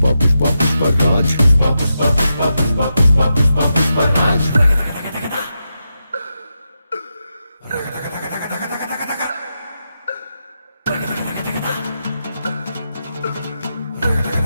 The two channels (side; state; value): both; inverted; correlation -0.87